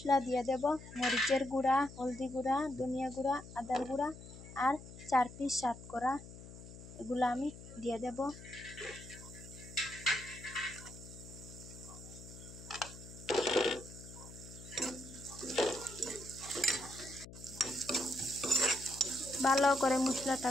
দিয়ে দেব। মরিচের গুঁড়া, হলদি গুঁড়া, ধনিয়া গুঁড়া, আদার গুঁড়া আর 4 পিস সাত করা, এগুলো আমি দিয়ে দেব। ভালো করে মশলাটা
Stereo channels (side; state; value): left; noise; hum, 15 dB below the sound